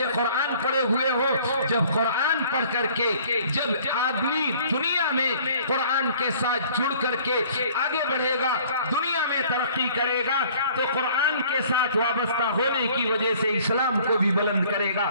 قرآن پڑھے ہوئے ہو؟ جب قرآن پڑھ کر کے جب آدمی دنیا میں قرآن کے ساتھ جڑ کر کے آگے بڑھے گا, دنیا میں ترقی کرے گا, تو قرآن کے ساتھ وابستہ ہونے کی وجہ سے اسلام کو بھی بلند کرے گا.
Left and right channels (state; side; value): inverted; both; correlation -0.54